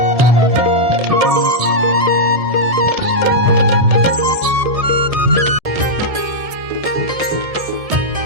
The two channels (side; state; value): left; late; 1.7 ms